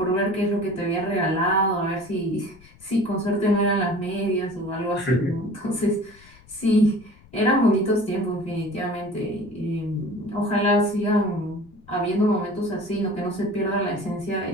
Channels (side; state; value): left; noise; rumble, 26 dB below the sound